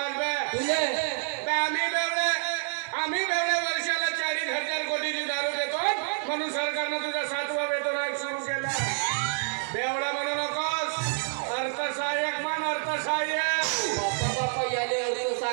बे? तुझे बे आम्ही बेवडे वर्षाला 40,000 कोटीची दारू देतो म्हणून सरकारनं तुझा 7वा वेतन आयोग सुरू केला. बेवडा म्हणू नकोस. अर्थसहाय्यक म्हण अर्थसहाय्यक. बापा याले अर्थ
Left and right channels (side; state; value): left; silent; digital silence